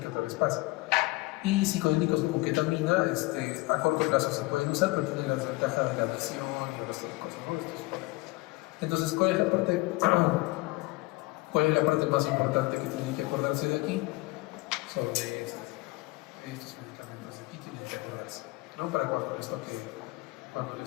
que otra vez pasa. Y psicodélicos como ketamina, a corto plazo se pueden usar, pero tienen la desventaja de la adicción y otras cosas, ¿no? Entonces, ¿cuál es la parte más importante que tienen que acordarse de aquí? Sobre estos medicamentos de aquí tienen que acordarse, ¿no? Para cuando les toque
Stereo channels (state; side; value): quieter; right; 22.2 dB